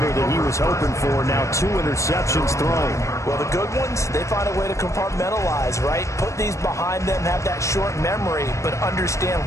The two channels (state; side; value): late; right; 0.15 ms